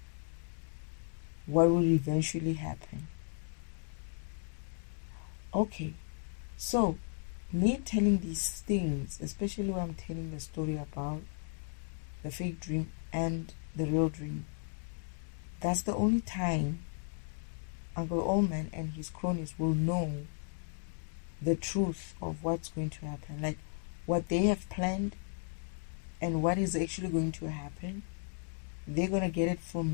what will eventually happen. Okay, so me telling these things, especially when I'm telling the story about the fake dream and the real dream. That's the only time Uncle Oman and his cronies will know the truth of what's going to happen. Like what they have planned and what is actually going to happen. They're going to get it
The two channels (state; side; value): silent; right; 54 dB below the other